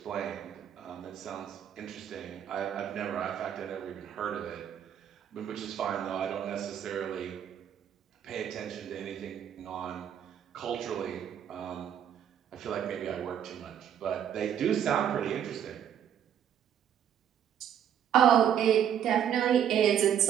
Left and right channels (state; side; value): quieter; left; 9.3 dB